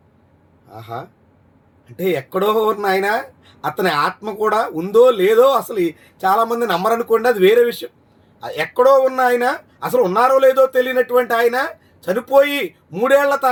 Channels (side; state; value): both; identical; correlation 1.00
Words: ఆహా, అంటే ఎక్కడో ఉన్న ఆయన అతని ఆత్మ కూడా ఉందో లేదో అసలు చాలామంది నమ్మరనుకోండి, అది వేరే విషయం. ఎక్కడో ఉన్న ఆయన, అసలు ఉన్నారో లేదో తెలియనటువంటి ఆయన చనిపోయి 3 ఏళ్ల